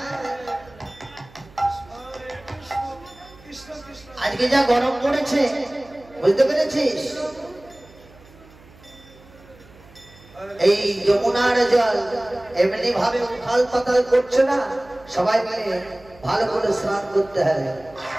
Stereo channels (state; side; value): noise; right; hum, 24 dB below the sound